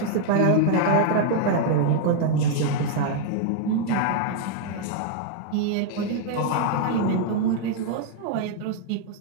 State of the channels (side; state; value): both; different; correlation -0.01